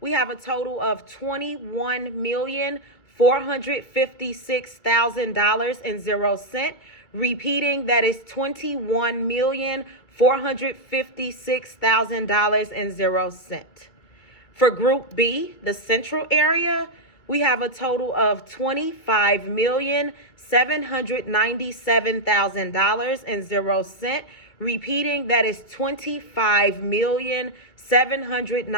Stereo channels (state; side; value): late; right; 2.2 ms